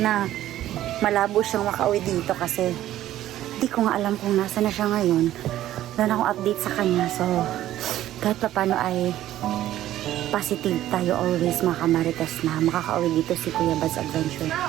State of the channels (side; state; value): left; quieter; 13.3 dB